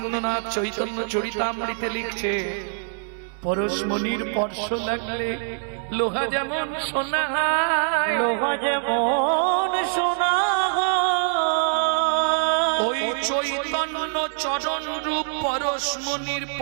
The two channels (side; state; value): left; silent; 62 dB below the other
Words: চৈতন্য চরিতামৃতে লিখছে, পরশমণির স্পর্শ লাগলে লোহা যেমন সোনা হয়, লোহা যেমন সোনা হয়, ওই চৈতন্য চরণ রূপ পরশমণির